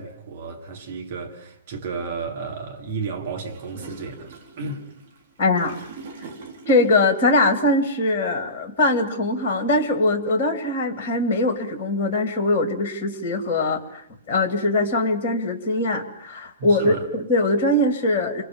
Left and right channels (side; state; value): both; inverted; correlation -0.31